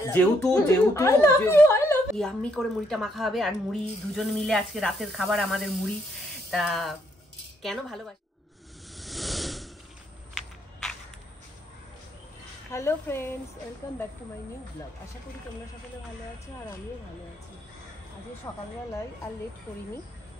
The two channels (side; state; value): both; normal; correlation 0.72